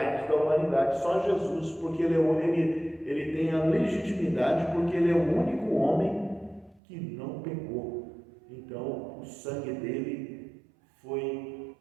da humanidade, só Jesus, porque ele tem a legitimidade, porque ele é o único homem que não pecou. Então, o sangue dele foi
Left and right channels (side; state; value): left; drops out; at 6.8 s